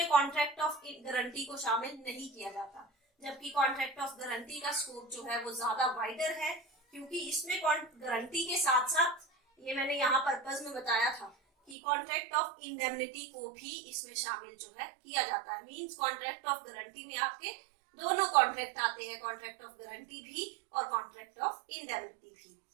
कॉन्ट्रैक्ट ऑफ गारंटी को शामिल नहीं किया जाता, जबकि कॉन्ट्रैक्ट ऑफ गारंटी का स्कोप जो है वो ज्यादा वाइडर है, क्योंकि इसमें गारंटी के साथ साथ, ये मैंने यहाँ पर्पज में बताया था कि कॉन्ट्रैक्ट ऑफ इंडेमनिटी को भी इसमें शामिल जो है किया जाता है। मींस कॉन्ट्रैक्ट ऑफ गारंटी में आपके दोनों कॉन्ट्रैक्ट आते हैं, कॉन्ट्रैक्ट ऑफ गारंटी भी और कॉन्ट्रैक्ट ऑफ इंडेमनिटी भी।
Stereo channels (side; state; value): left; drops out; at 11.8 s